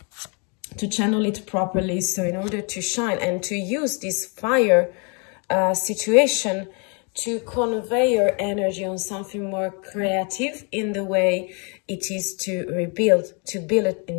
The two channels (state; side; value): quieter; right; 35.1 dB